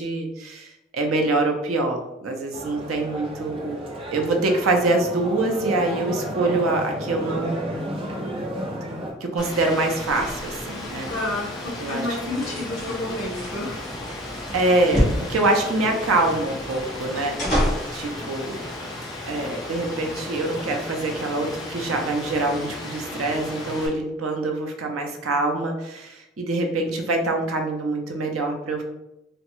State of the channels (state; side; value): normal; both; correlation 0.39